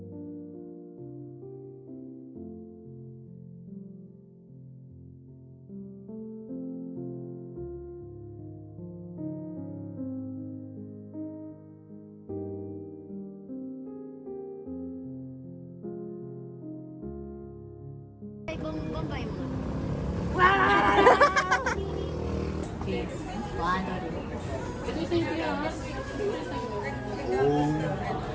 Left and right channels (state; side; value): identical; both; correlation 1.00